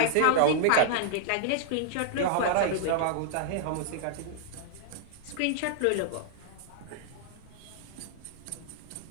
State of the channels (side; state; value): both; different; correlation -0.01